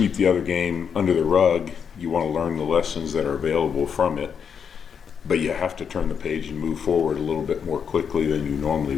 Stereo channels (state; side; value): quieter; right; 7.1 dB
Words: the other game under the rug. You want to learn the lessons that are available from it, but you have to turn the page and move forward a little bit more quickly than you normally